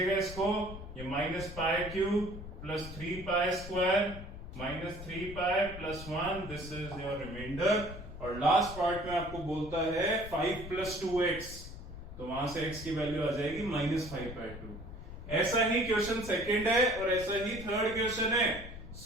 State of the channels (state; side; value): noise; left; rumble, 12 dB below the sound